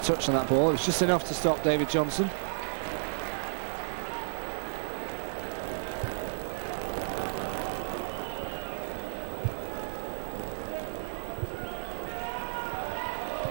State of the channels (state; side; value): silent; left; digital silence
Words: touch on that ball. It was just enough to stop David Johnson.